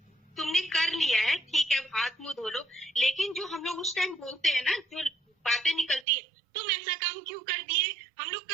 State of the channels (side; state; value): left; drops out; at 6.1 s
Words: तुमने कर लिया है, ठीक है, हाथ मुंह धो लो। लेकिन जो हम लोग उस टाइम बोलते हैं ना, जो बातें निकलती है, तुम ऐसा काम क्यों कर दिए, हम लोग